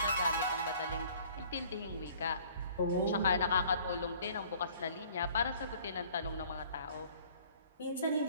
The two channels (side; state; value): both; inverted; correlation -0.54